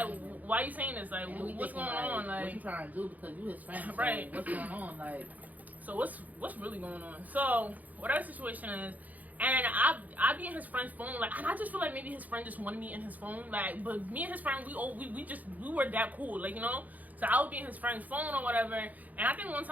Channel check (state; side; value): late; left; 0.079 ms